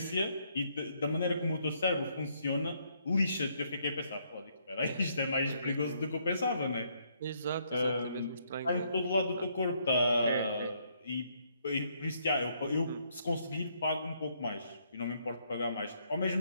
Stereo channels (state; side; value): inverted; both; correlation -0.71